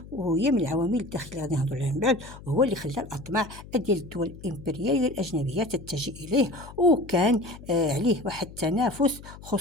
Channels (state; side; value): noise; left; hum, 17 dB below the sound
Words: وهي من العوامل الداخلية غادي نهضروا عليها من بعد، وهو اللي خلى الأطماع ديال الدول الإمبريالية الأجنبية تتجه إليه، وكان عليه واحد التنافس